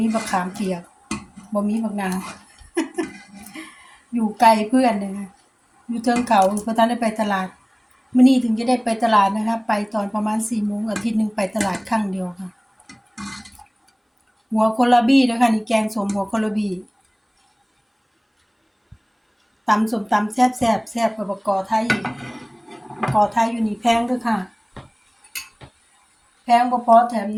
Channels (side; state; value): both; identical; correlation 1.00